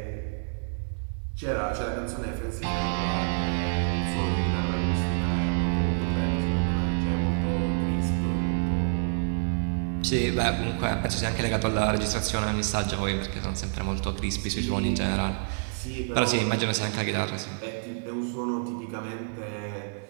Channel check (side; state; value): left; silent; digital silence